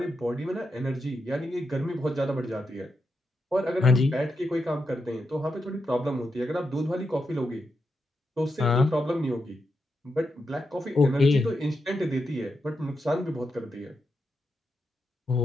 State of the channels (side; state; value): both; normal; correlation 0.85